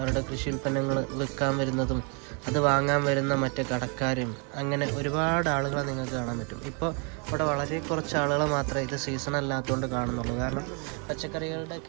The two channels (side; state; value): left; quieter; 36.4 dB